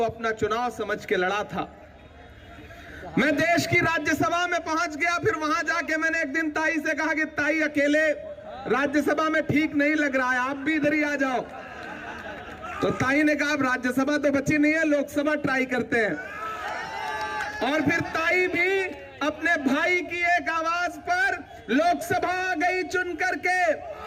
अपना चुनाव समझ के लड़ा था। मैं देश की राज्यसभा में पहुंच गया, फिर वहां जाके मैंने एक दिन ताई से कहा कि ताई अकेले राज्यसभा में ठीक नहीं लग रहा है, आप भी इधर ही आ जाओ। तो ताई ने कहा अब राज्यसभा तो बची नहीं है, लोकसभा ट्राई करते हैं। और फिर ताई भी अपने भाई की एक आवाज पर लोकसभा आ गई चुन करके।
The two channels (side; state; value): both; identical; correlation 1.00